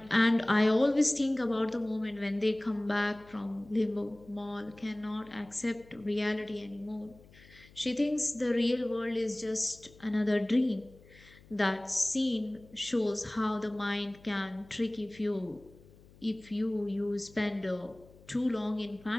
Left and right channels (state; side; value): noise; left; hum, 24 dB below the sound